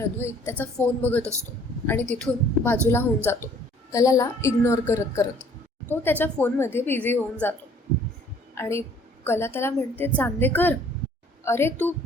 अद्वैत त्याचा फोन बघत असतो आणि तिथून बाजूला होऊन जातो, कलाला इग्नोर करत तो त्याच्या फोनमध्ये बिझी होऊन जातो. आणि कला त्याला म्हणते, चांदेकर, अरे तू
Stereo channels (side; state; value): both; normal; correlation 0.57